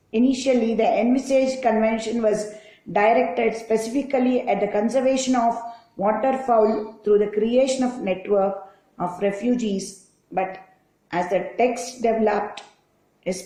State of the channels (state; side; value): identical; both; correlation 1.00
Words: convention was directed specifically at the conservation of waterfowl through the creation of network of refugees, but as the text developed,